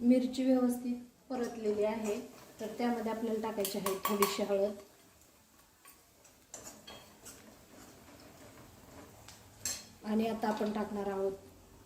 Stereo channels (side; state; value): both; identical; correlation 1.00